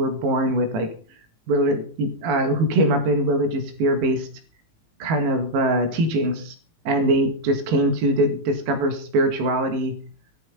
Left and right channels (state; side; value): late; left; 19 ms